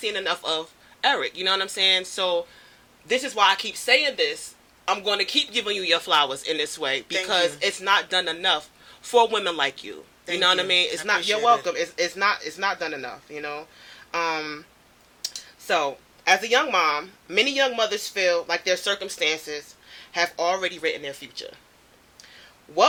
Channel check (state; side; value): identical; both; correlation 1.00